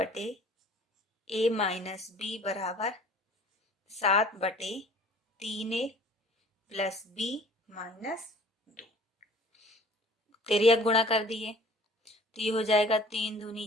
a माइनस बी बराबर 7 बटे 3a प्लस बी -2। तिर्यक गुणा कर दिए तो ये हो जाएगा 3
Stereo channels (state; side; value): normal; both; correlation 0.50